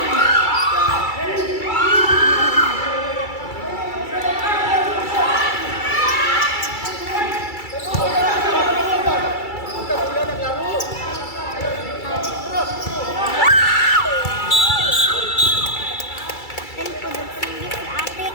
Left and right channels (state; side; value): late; right; 2.3 ms